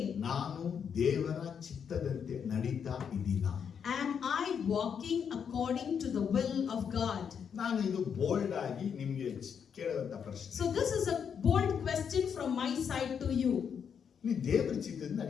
ನಾನು ದೇವರ ಚಿತ್ತದಂತೆ ನಡೀತಾ ಇದ್ದೀನಾ? Am I walking according to the will of God? ನಾನು ಇದು ಬೋಲ್ಡ್ ಆಗಿ ನಿಮ್ಗೆ ಕೇಳುವಂತ ಪ್ರಶ್ನೆ. So this is a bold question from my side to you. ನೀ ದೇವರ ಚಿತ್ತದಿಂದ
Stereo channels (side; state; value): right; quieter; 7.3 dB